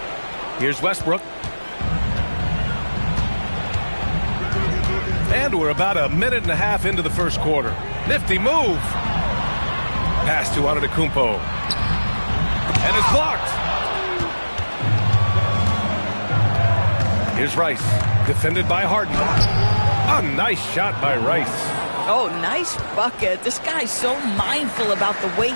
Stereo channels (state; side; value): inverted; both; correlation -1.00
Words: Here's Westbrook. And we're about a minute and a half into the first quarter. Nifty move. Pass to Antetokounmpo. And it's blocked. Here's Rice. Defended by Harden. A nice shot by Rice. Oh, nice bucket. This guy's so mindful about the way